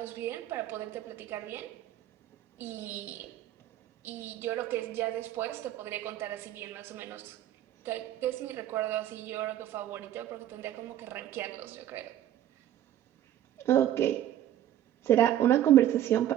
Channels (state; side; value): quieter; left; 12.1 dB